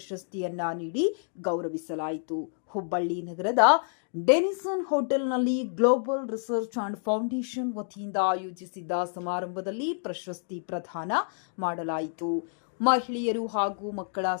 ನೀಡಿ ಗೌರವಿಸಲಾಯಿತು. ಹುಬ್ಬಳ್ಳಿ ನಗರದ ಡೆನಿಸನ್ ಹೋಟೆಲ್ನಲ್ಲಿ ಗ್ಲೋಬಲ್ ರಿಸರ್ಚ್ ಅಂಡ್ ಫೌಂಡೇಶನ್ ವತಿಯಿಂದ ಆಯೋಜಿಸಿದ್ದ ಸಮಾರಂಭದಲ್ಲಿ ಪ್ರಶಸ್ತಿ ಪ್ರದಾನ ಮಾಡಲಾಯಿತು. ಮಹಿಳೆಯರು ಹಾಗೂ ಮಕ್ಕಳ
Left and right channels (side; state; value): right; silent; digital silence